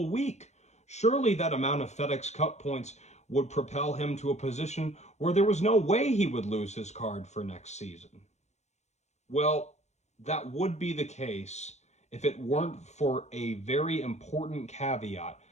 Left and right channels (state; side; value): late; right; 0.33 ms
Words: week. Surely that amount of FedEx Cup points would propel him to a position where there was no way he would lose his card for next season. Well, that would be the case if it weren't for a very important caveat